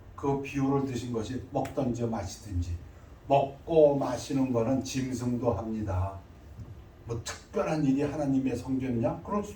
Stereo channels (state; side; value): identical; both; correlation 1.00